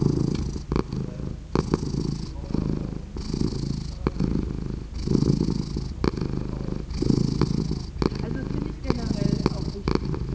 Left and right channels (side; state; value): both; identical; correlation 1.00